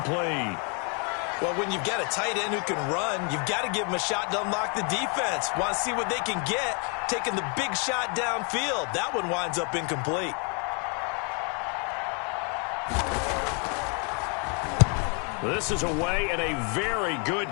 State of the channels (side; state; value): right; quieter; 37.0 dB